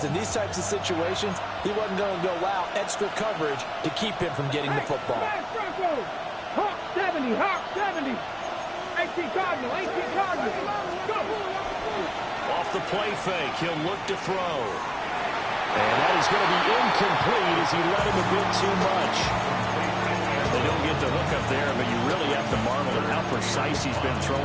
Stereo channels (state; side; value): identical; both; correlation 1.00